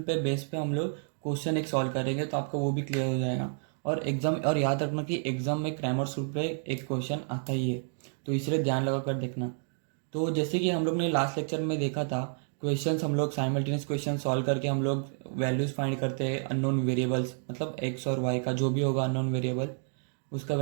पे बेस पे हम लोग क्वेश्चन एक सॉल्व करेंगे तो आपका वो भी क्लियर हो जाएगा। और याद रखना कि एग्जाम में क्रैमर्स रूल पे एक क्वेश्चन आता ही है, तो इसलिए ध्यान लगा कर देखना। तो जैसे कि हम लोग ने लास्ट लेक्चर में देखा था, क्वेश्चंस हम लोग साइमल्टेनियस क्वेश्चन सॉल्व करके हम लोग वैल्यूज़ फाइंड करते हैं अननोन वेरिएबल्स, मतलब एक्स और वाई का जो भी होगा अननोन वेरिएबल उसका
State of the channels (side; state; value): left; silent; 58 dB below the other